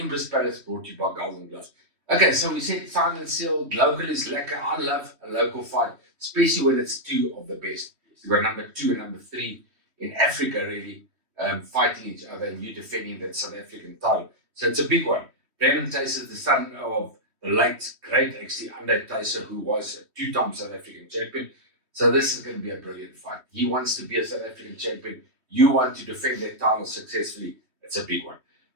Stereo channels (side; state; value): left; late; 3.1 ms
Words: Palace, brought to you by Golden Gloves. Okay, so we said signed and sealed. Local is lekker. I love a local fight, especially when it's two of the best. You've got number 2 and number 3 in Africa, really, fighting each other, and you defending that South African title. So it's a big one. Brandon Thysse is the son of the late, great, actually, Andre Thysse, who was a 2-time South African champion. So this is going to be a brilliant fight. He wants to be a South African champion. You want to defend that title successfully. It's a big one.